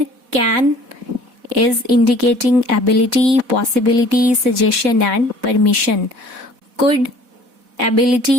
can is indicating ability, possibility, suggestion, and permission. Could,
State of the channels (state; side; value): late; left; 4.1 ms